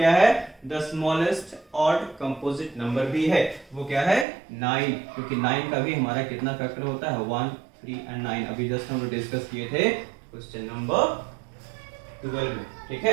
है, the smallest odd composite number भी है, वो क्या है, 9, क्योंकि 9 का भी हमारा कितना फैक्टर होता है, 1, 3 एंड 9। अभी जस्ट हम लोग डिस्कस किए थे क्वेश्चन नंबर 12 में। ठीक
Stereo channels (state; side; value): drops out; left; at 4.2 s